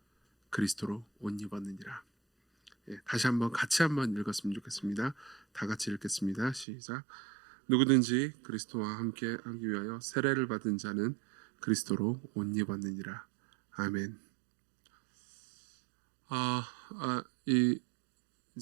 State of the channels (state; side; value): drops out; left; at 6.7 s